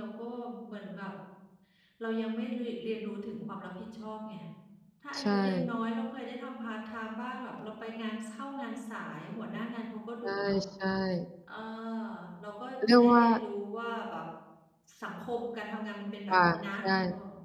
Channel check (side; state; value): both; identical; correlation 1.00